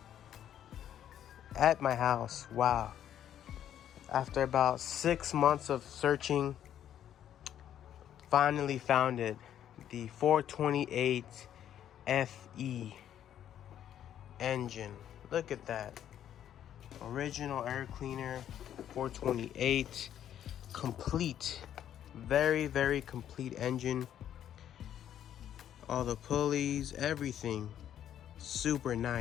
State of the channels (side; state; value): right; quieter; 10.5 dB